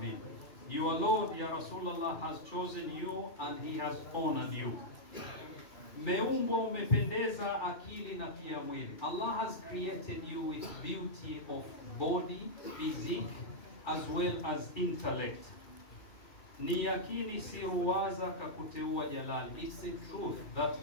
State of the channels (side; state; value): right; late; 2.6 ms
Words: Your Lord, ya Rasulullah, has chosen you and he has honored you. Meumbwa umependeza akili na pia mwili. Allah has created you with beauty of body, physique, as well as intellect. Ni yakini si ruwaza kakuteua jalali. It's a truth that